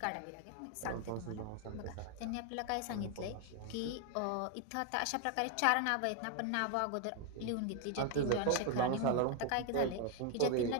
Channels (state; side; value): different; both; correlation 0.01